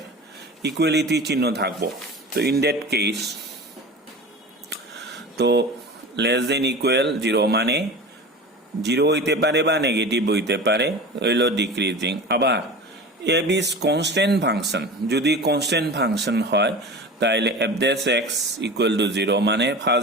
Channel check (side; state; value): both; normal; correlation 0.33